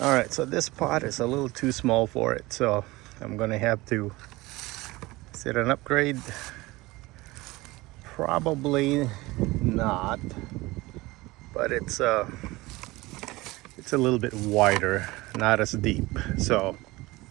right, so this pot is a little too small for it, so I'm gonna have to set an upgrade. Probably not, but it's a little bit wider, not as deep, so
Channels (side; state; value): left; quieter; 20.8 dB